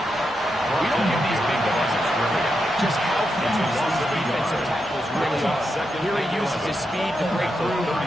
We don't give these big guys just how fast these defensive tackles really are. Here he uses his speed to break through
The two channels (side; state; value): both; normal; correlation 0.85